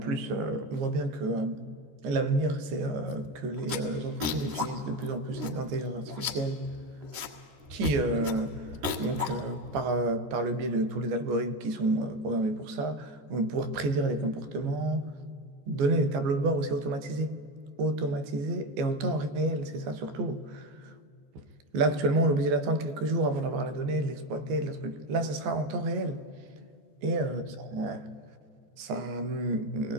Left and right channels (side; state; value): left; late; 14 ms